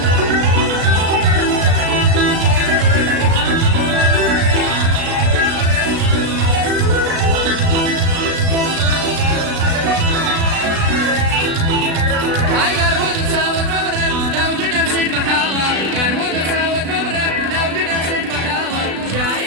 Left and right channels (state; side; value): late; left; 36 ms